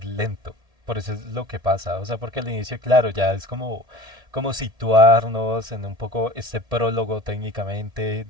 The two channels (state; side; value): late; left; 1.7 ms